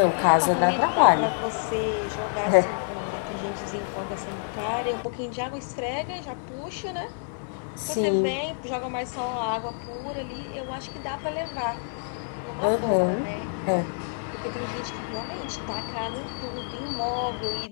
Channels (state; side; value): silent; right; 60 dB below the other